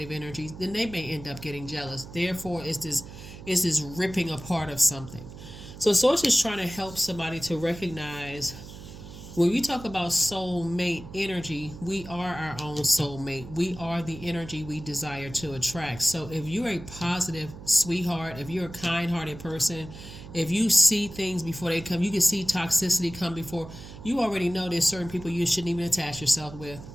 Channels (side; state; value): right; noise; hum, 14 dB below the sound